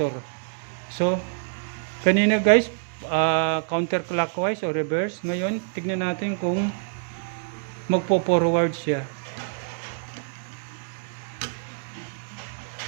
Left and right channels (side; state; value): left; silent; digital silence